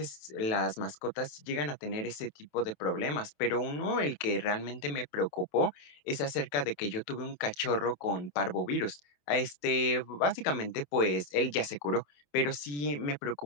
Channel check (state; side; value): late; right; 27 ms